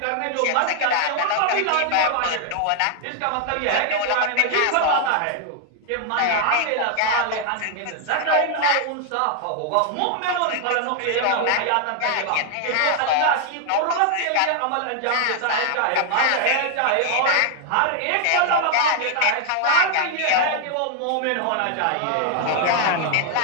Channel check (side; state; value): both; different; correlation 0.00